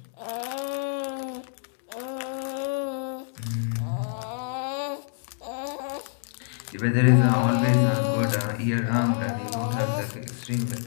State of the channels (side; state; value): right; silent; digital silence